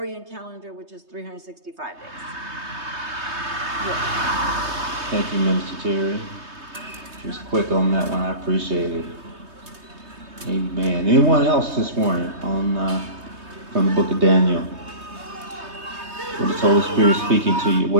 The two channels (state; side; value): late; left; 3.2 ms